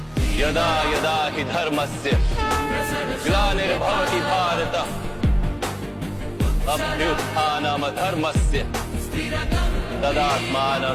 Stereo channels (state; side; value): identical; both; correlation 1.00